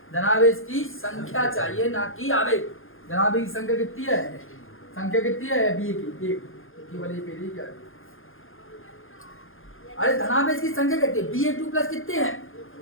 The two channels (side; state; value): right; late; 0.60 ms